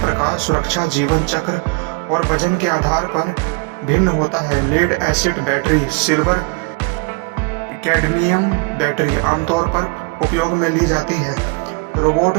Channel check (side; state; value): left; quieter; 31.1 dB